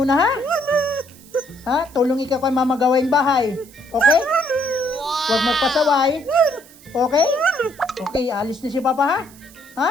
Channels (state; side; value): noise; right; hiss, 23 dB below the sound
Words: ha? Ha? Tulong ikaw kay Mama gawain bahay. Okay? Huwag magpasaway. Okay? Okay, alis na si Papa, ha? Ha?